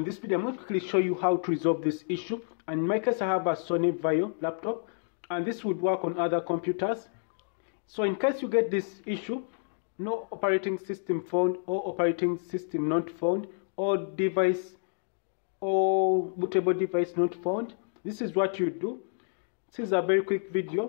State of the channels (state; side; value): silent; right; digital silence